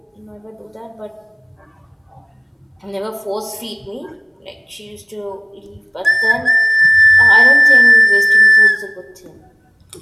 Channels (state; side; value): identical; both; correlation 1.00